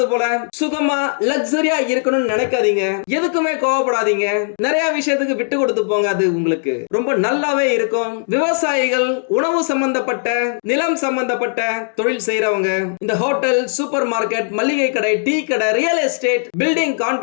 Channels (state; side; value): silent; right; digital silence